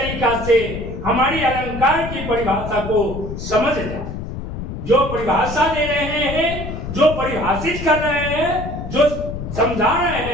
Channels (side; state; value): left; noise; rumble, 7 dB below the sound